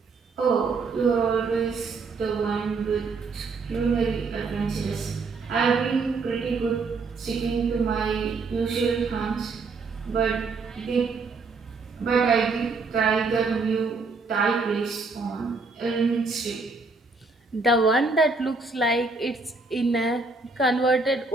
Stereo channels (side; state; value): left; quieter; 4.1 dB